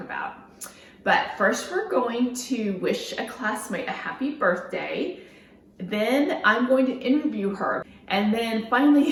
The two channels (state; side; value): identical; both; correlation 1.00